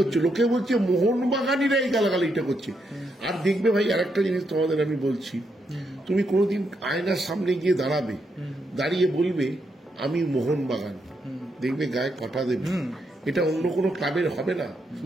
লোকে বলছে মোহনবাগানিরা এই গালাগালিটা করছে। আর দেখবে ভাই, আরেকটা জিনিস তোমাদের আমি বলছি, তুমি কোনোদিন আয়নার সামনে গিয়ে দাঁড়াবে, দাঁড়িয়ে বলবে আমি মোহনবাগান, দেখবে গায়ে কাঁটা দেবে। এটা অন্য কোনো ক্লাবের হবে না,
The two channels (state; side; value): normal; both; correlation 0.80